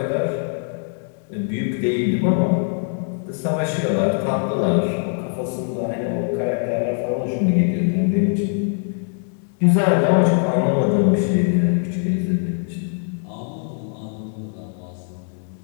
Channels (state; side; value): silent; right; 59 dB below the other